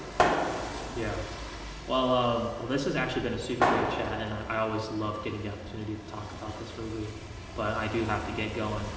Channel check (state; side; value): identical; both; correlation 1.00